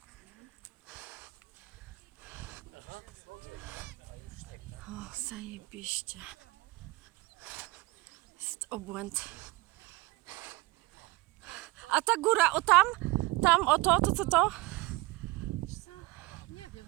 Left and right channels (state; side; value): quieter; left; 21.0 dB